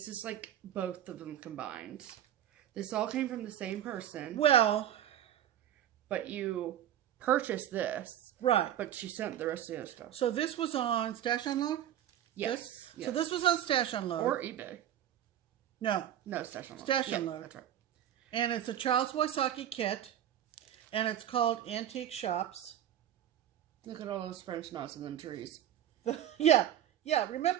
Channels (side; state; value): left; quieter; 11.2 dB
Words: is like both of them combined. This all came from the same person. Well... But you purchased this. Right. But she sent the rest of the other stuff. So this was on Stash Unload? Yes. So this was on Stash Unload. Or eBay. No. No, Stash Unload. Stash Yeah, Unload. that's right. And it's a Charles Wysocki kit. And it's called Antique Shops. Look at all those French knots in them trees. Yeah.